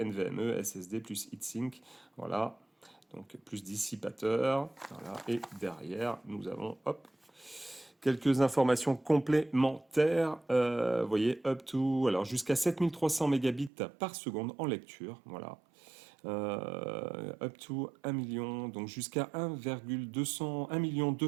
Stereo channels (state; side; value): drops out; left; at 13.7 s